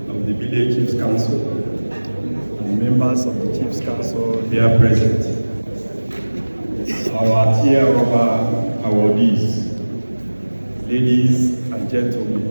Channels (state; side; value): inverted; both; correlation -1.00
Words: of the Bille Chiefs Council, and members of the Chiefs Council here present, our tier rubber awardees, ladies and gentlemen.